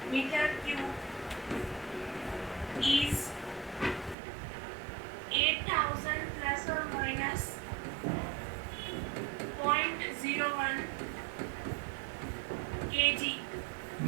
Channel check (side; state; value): left; drops out; at 4.2 s